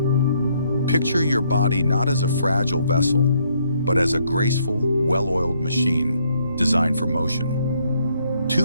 Picture your body not as a fragile vessel, but as a graceful, well-oiled machine designed for motion.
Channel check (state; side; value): inverted; both; correlation -0.71